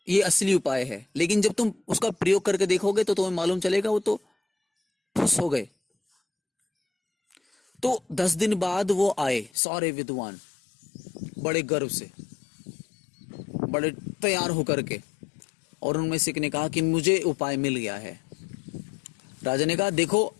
ये असली उपाय है, लेकिन जब तुम उसका प्रयोग करके देखोगे तो तुम्हें मालूम चलेगा वो तो फुस हो गए। तो 10 दिन बाद वो आए सारे विद्वान, बड़े गर्व से, बड़े तैयार होकर के, और उनमें से एक ने कहा कि मुझे उपाय मिल गया है। राजा ने कहा देखो,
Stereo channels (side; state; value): right; drops out; at 9.5 s